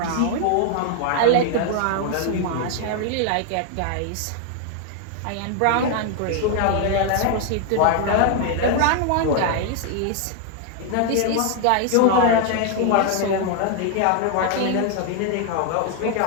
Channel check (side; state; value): both; different; correlation 0.00